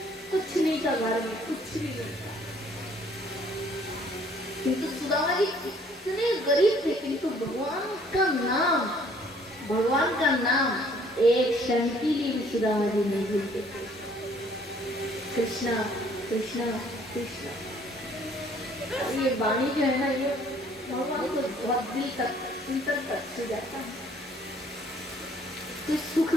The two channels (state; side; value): normal; both; correlation 0.60